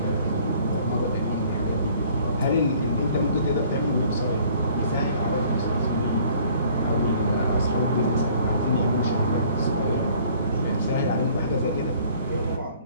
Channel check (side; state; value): both; inverted; correlation -0.56